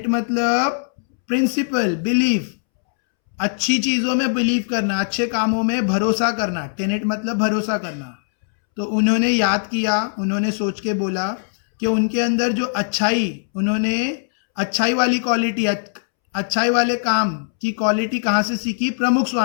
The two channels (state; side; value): silent; right; 65 dB below the other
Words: मतलब प्रिंसिपल, बिलीफ, अच्छी चीजों में बिलीव करना, अच्छे कामों में भरोसा करना. टेनेट मतलब भरोसा करना. तो उन्होंने याद किया, उन्होंने सोच के बोला कि उनके अंदर जो अच्छाई, उन्होंने अच्छाई वाली क्वालिटी, अच्छाई वाले काम की क्वालिटी कहाँ से सीखी, प्रमुख